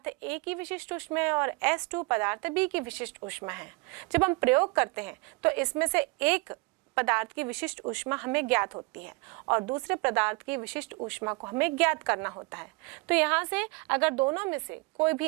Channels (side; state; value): left; quieter; 27.7 dB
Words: A की विशिष्ट ऊष्मा है और S2 पदार्थ B की विशिष्ट ऊष्मा है। जब हम प्रयोग करते हैं तो इसमें से एक पदार्थ की विशिष्ट ऊष्मा हमें ज्ञात होती है और दूसरे पदार्थ की विशिष्ट ऊष्मा को हमें ज्ञात करना होता है। तो यहाँ से अगर दोनों में से कोई भी